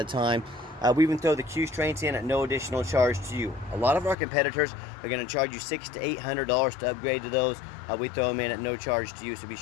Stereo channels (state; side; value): drops out; right; at 4.2 s